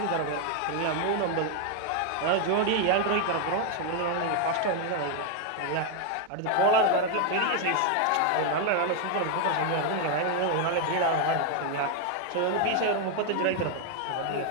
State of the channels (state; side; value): different; both; correlation 0.01